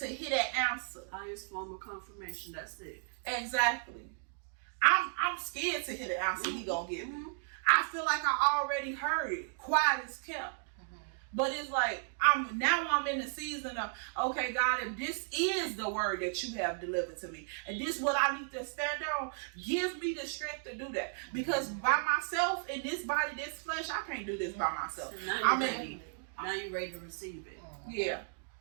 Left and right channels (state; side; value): silent; left; digital silence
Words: hear that answer. Highest form of confirmation. That's it. Exactly. I'm scared to hear the answer he gonna give me. I feel like I already heard it. Quiet as kept. But it's like I'm in the season of, okay, God, if this is the word that you have delivered to me, and this is what I need to stand on, give me the strength to do that. Because by myself in this body, this flesh, I can't do this by myself. So now you're ready. Now you're ready to receive it. Yeah.